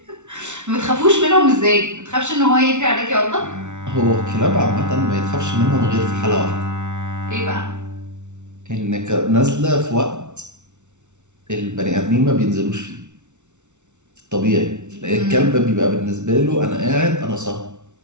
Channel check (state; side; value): late; left; 0.83 ms